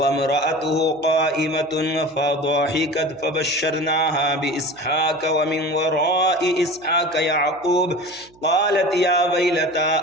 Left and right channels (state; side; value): noise; right; hum, 29 dB below the sound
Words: इम्रअतुहु क़ाइमतुन फ़ضحكت फ़बश्शरनाहा बिइस्हाक़ व मिन वराइ इस्हाक़ याक़ूब क़ालत या वैलता